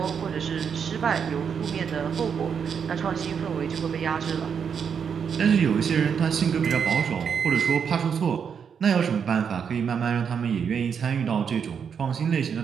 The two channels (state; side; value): quieter; left; 7.0 dB